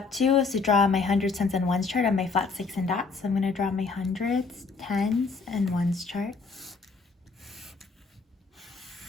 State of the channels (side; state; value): right; quieter; 4.4 dB